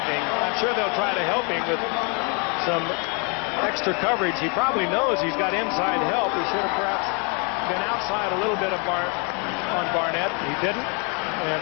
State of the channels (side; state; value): right; quieter; 34.7 dB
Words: I'm sure they'll try to help him with some extra coverage. He probably knows he's got inside help. He should have perhaps been outside a little bit on Barnett. He didn't, and